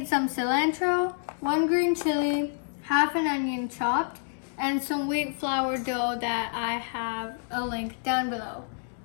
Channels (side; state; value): right; silent; digital silence